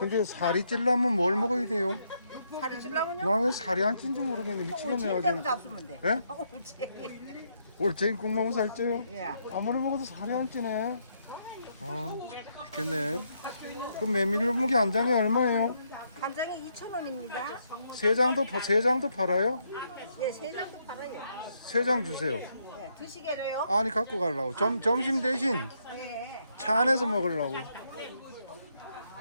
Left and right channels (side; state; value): both; inverted; correlation -0.76